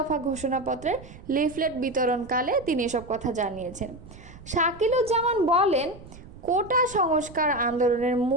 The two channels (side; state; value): right; noise; rumble, 18 dB below the sound